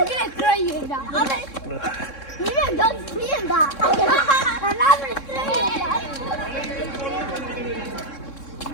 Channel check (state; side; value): late; right; 3.6 ms